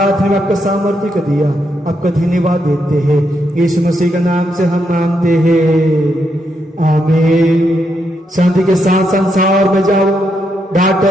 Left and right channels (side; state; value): both; normal; correlation 0.80